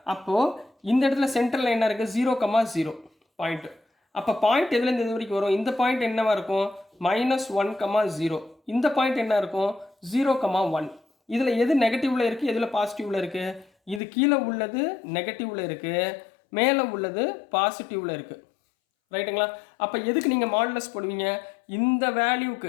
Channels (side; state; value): right; drops out; at 14.0 s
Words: அப்போது இந்த இடத்துல சென்டரில் என்ன இருக்குது, 0,0 பாயிண்ட்டு. அப்போ பாயிண்ட் எதுலேருந்து எது வரைக்கும் வரும், இந்த பாயிண்ட் என்னவாக இருக்கும், -1,0. இந்த பாயிண்ட் என்ன இருக்கும், 0,1. இதில் எது நெகட்டிவில் இருக்குது, எதில் பாசிட்டிவில் இருக்குது, இது கீழே உள்ளது நெகட்டிவில் இருக்குது, மேலே உள்ளது பாசிட்டிவில் இருக்குது. ரைட்டுங்களா? அப்போ எதுக்கு நீங்கள் மாடுலஸ் போடுவீங்க, இந்த